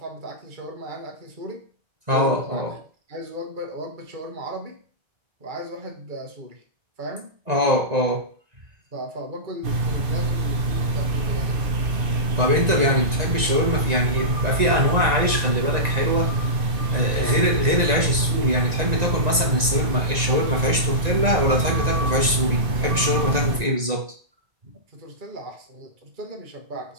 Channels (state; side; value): late; left; 1.9 ms